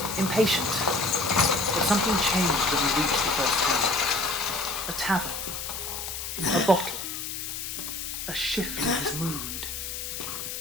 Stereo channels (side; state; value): left; noise; hiss, 6 dB below the sound